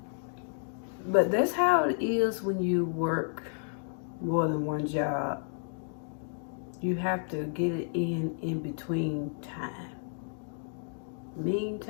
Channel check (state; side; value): silent; right; digital silence